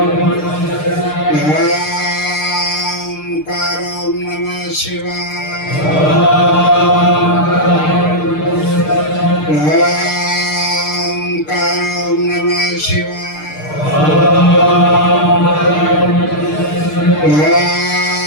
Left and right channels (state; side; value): late; right; 6.6 ms